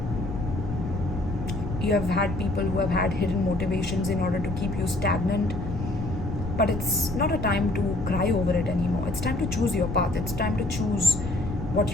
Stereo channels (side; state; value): left; noise; rumble, 6 dB below the sound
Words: You have had people who have had hidden motivations in order to keep you stagnant. But it's not a time to cry over it anymore. It's time to choose your path. It's time to choose what